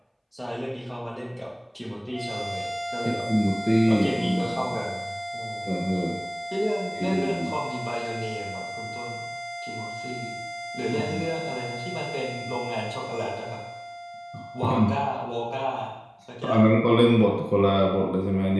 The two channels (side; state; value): both; identical; correlation 1.00